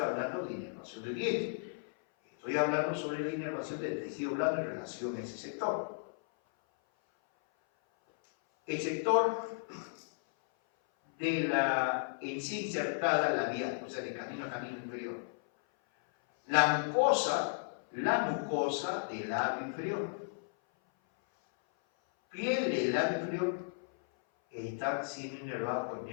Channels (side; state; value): right; silent; 55 dB below the other